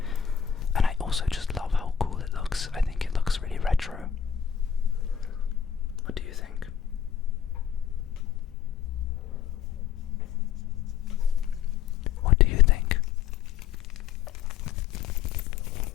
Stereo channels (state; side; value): quieter; right; 8.5 dB